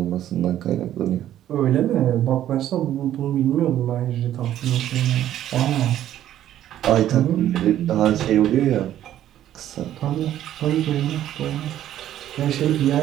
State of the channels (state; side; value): quieter; left; 12.0 dB